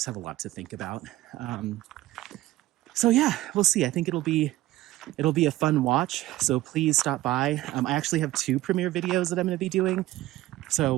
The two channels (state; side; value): quieter; left; 16.6 dB